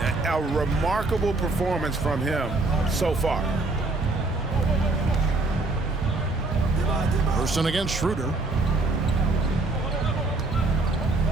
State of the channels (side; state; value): left; quieter; 3.2 dB